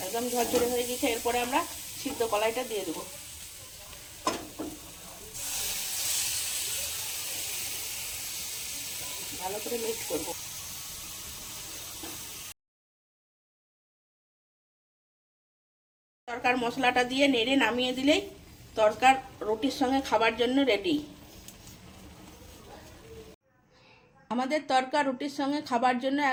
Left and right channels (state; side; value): identical; both; correlation 1.00